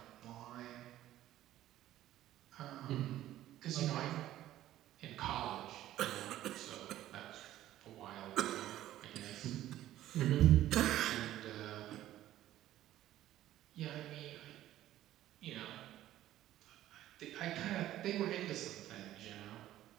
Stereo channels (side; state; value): left; quieter; 13.7 dB